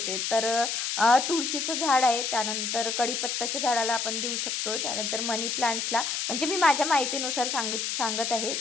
तर तुळशीचं झाड आहे, त्यानंतर कढीपत्ताच्या झाडाला आपण देऊ शकतो, त्यानंतर मनी प्लांट्सला, म्हणजे मी माझ्या माहितीनुसार सांगत आहे.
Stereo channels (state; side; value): noise; left; hiss, 1 dB below the sound